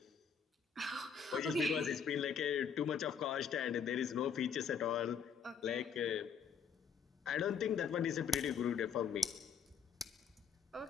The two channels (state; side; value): quieter; right; 6.8 dB